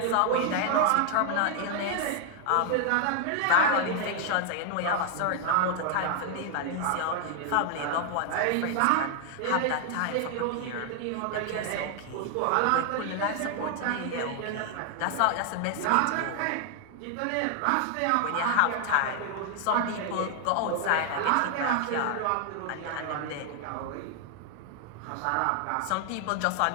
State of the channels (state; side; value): different; both; correlation 0.00